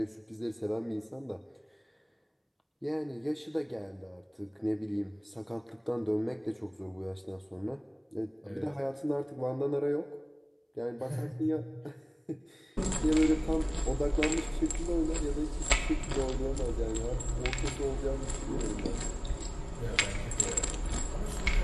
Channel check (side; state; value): both; identical; correlation 1.00